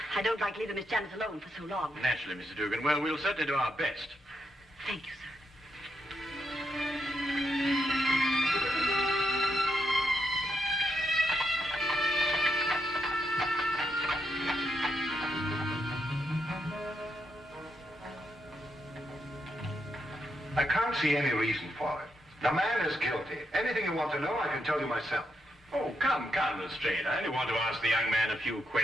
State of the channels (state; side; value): normal; both; correlation 0.81